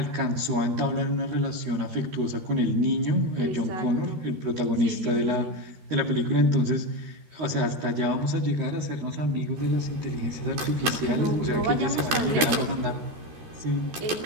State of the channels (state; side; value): late; left; 13 ms